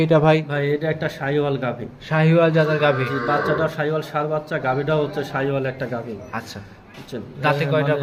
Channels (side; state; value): both; identical; correlation 1.00